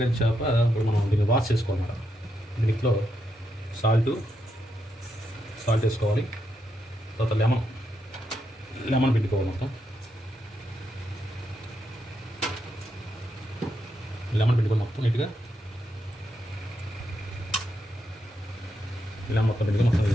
చేప ఇప్పుడు మనం దీన్ని వాష్ చేసుకోవాలి. దీంట్లో సాల్ట్ వేసుకోవాలి. తర్వాత లెమన్ పిండుకోవాలి. మొత్తం నీట్గా లెమన్ మొత్తం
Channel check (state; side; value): normal; both; correlation 0.82